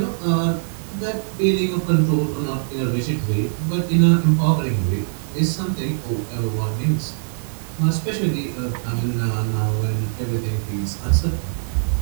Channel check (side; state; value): left; silent; digital silence